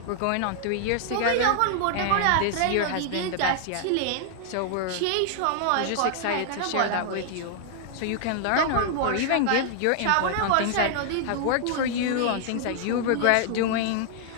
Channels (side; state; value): both; different; correlation 0.00